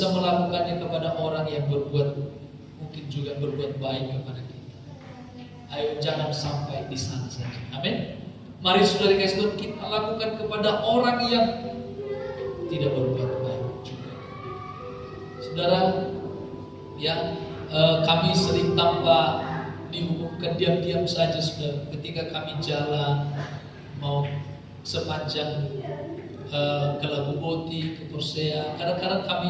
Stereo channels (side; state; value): both; identical; correlation 1.00